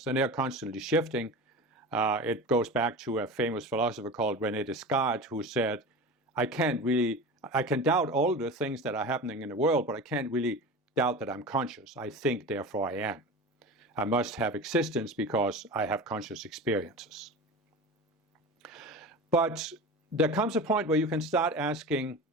and they are constantly shifting. It goes back to a famous philosopher called René Descartes, who said, I can doubt all the things that are happening in the world, but I can't really doubt that I'm conscious. I think, therefore I am. I must have existence because I have conscious experiences. But there comes a point where you can start asking,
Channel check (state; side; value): normal; both; correlation 0.31